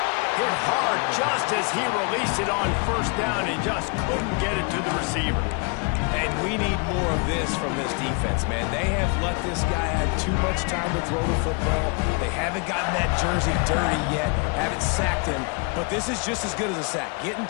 Hit hard just as he released it on first down and just couldn't get it to the receiver. And we need more of this from this defense, man. They have let this guy have too much time to throw the football. They haven't gotten that jersey dirty yet, haven't sacked him, but this is just as good as a sack. Getting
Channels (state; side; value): quieter; right; 34.0 dB